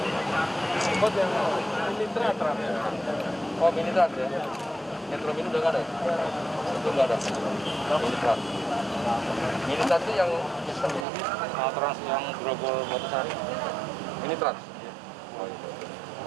Angkot yang mini truk. Oh mini truk ya? Metro Mini udah nggak ada ya? Itu nggak ada? Mini truk. Mini truk itu yang trans yang Grogol Batasari. Mini truk? Oh iya.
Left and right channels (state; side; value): drops out; left; at 11.1 s